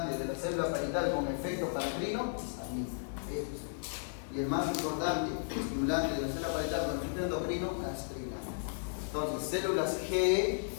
de la célula parietal con efecto paracrino? Histamina. Y el más importante estimulante de la célula parietal con efecto endocrino, gastrina. Entonces, células G,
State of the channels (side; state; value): right; silent; digital silence